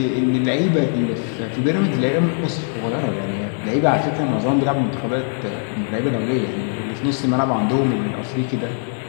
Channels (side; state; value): right; silent; digital silence